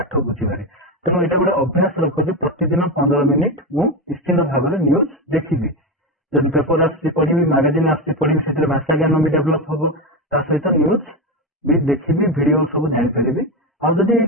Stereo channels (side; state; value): both; normal; correlation 0.14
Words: ବୁଝିବାରେ। ତେଣୁ ଏଇଟା ଗୋଟେ ଅଭ୍ୟାସ ରଖ ଯେ ପ୍ରତିଦିନ 15 ମିନିଟ ମୁଁ ନିଶ୍ଚିନ୍ତ ଭାବରେ ନ୍ୟୁଜ ଦେଖିବି। ଯଦି ପେପର ଆସୁଛି ପଢିବି, ମାଗାଜିନ୍ ଆସୁଛି ପଢିବି, ସେଥିରେ ଭାଷା ଜ୍ଞାନ ବି ଡେଭଲପ ହବ, ତା ସହିତ ନ୍ୟୁଜ ବି ଦେଖିବି, ଭିଡିଓ ସବୁ ଜାଣିପାରିବି। ଆଉ ଯଦି